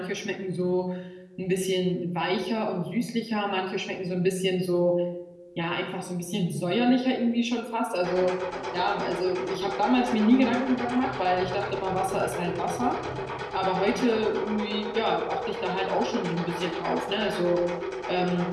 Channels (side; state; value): both; identical; correlation 1.00